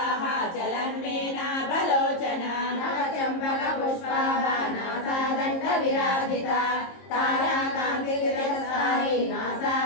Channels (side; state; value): right; late; 22 ms